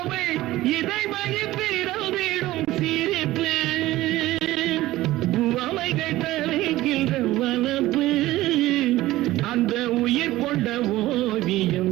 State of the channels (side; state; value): left; quieter; 16.7 dB